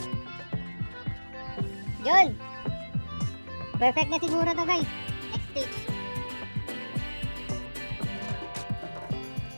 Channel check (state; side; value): inverted; both; correlation -1.00